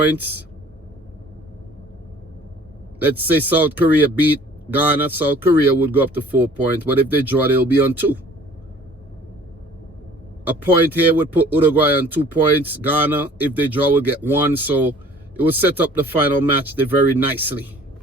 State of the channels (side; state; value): both; normal; correlation 0.51